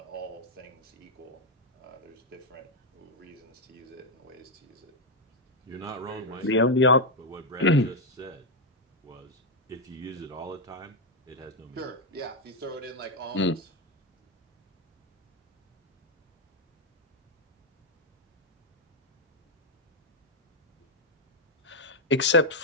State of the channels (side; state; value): both; normal; correlation 0.02